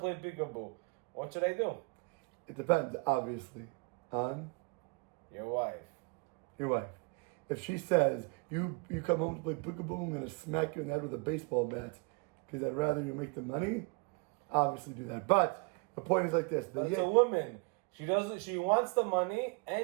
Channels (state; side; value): quieter; left; 30.5 dB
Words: peekaboo. What should I do? It depends, obviously, on your wife. Your wife. If she says, you come home to play peekaboo, I'm going to smack you in the head with a baseball bat because I'd rather you make the money, obviously do that. But the point is like this. But it's a woman. She wants the money